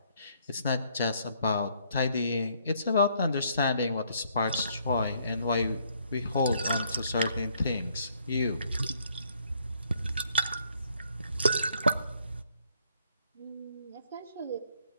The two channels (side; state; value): both; inverted; correlation -0.68